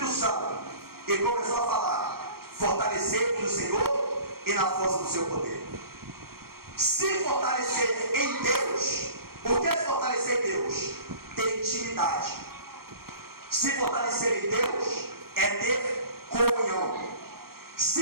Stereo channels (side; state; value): left; late; 0.94 ms